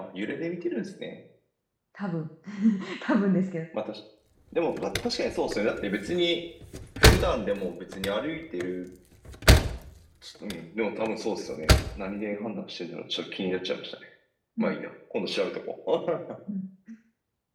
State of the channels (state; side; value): identical; both; correlation 1.00